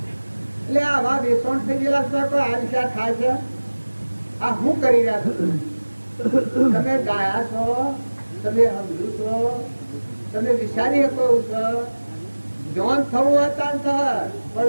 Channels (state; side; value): inverted; both; correlation -1.00